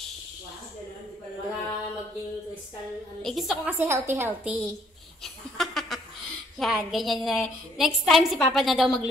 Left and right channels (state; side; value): normal; both; correlation 0.64